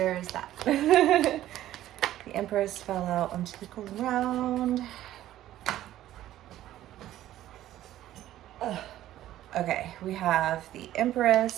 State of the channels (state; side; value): quieter; left; 13.4 dB